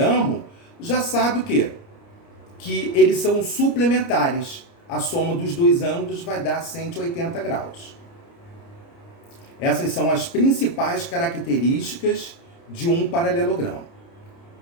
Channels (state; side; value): late; right; 29 ms